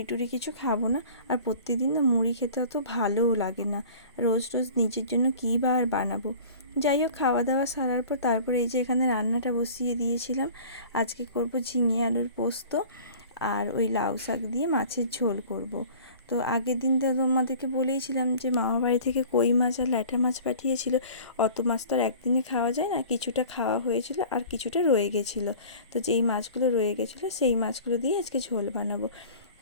টুড়ি কিছু খাবো না। আর প্রতিদিন না মুড়ি খেতে অত ভালোও লাগে না, রোজ রোজ নিজের জন্য কী বা আর বানাবো। যাই হোক, খাওয়া দাওয়া সারার পর তারপরে এই যে এখানে রান্নাটা বসিয়ে দিয়েছিলাম। আজকে করব ঝিঙে আলুর পোস্ত, আর ওই লাউ শাক দিয়ে মাছের ঝোল করব। তো আগের দিন তো তোমাদেরকে বলেইছিলাম যে মামা বাড়ি থেকে কই মাছ আর ল্যাঠা মাছ পাঠিয়েছিল। অত মাছ তো আর একদিনে খাওয়া যায় না, কিছুটা খাওয়া হয়েছিল আর কিছুটা রয়ে গেছিলো। তো যেই মাছগুলো রয়ে গেছিলো সেই মাছগুলো দিয়ে আজকে ঝোল বানাবো।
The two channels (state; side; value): inverted; both; correlation -0.44